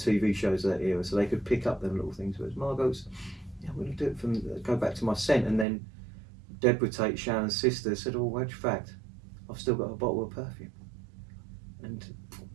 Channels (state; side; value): drops out; left; at 5.7 s